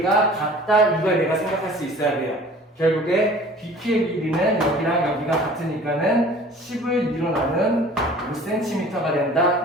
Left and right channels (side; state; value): both; normal; correlation 0.47